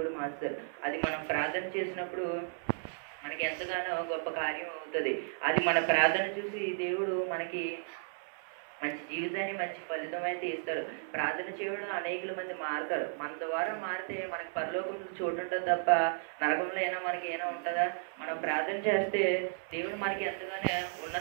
మార్చుతాడు. అది మనం ప్రార్థన చేసినప్పుడు మనకి ఎంతగానో గొప్ప కార్యం అవుతుంది. అది మన ప్రార్థన చూసి దేవుడు మనకి మంచి జీవితాన్ని మంచి ఫలితం అయితే ఇస్తాడు. ప్రార్థన చేయడం అనేకుల మంది మారుతారు. మన ద్వారా మారితే మనకి పరలోకంలో చోటు ఉంటుంది తప్ప నరకంలో అయినా మనకి ఏమైనా ఉంటుందా? మనం ప్రార్థన చేస్తే దేవుడు మనకి ఎంతగానో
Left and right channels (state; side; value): silent; left; 55 dB below the other